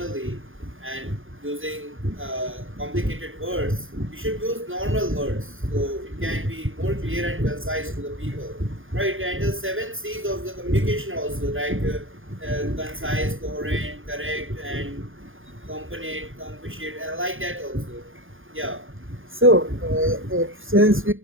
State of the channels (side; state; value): left; late; 0.59 ms